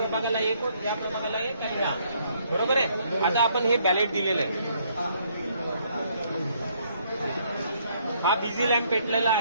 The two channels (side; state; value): both; inverted; correlation -0.68